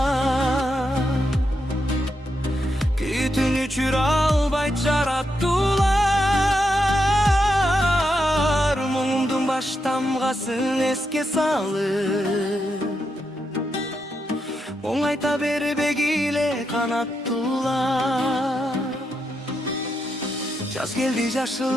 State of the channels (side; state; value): both; normal; correlation 0.83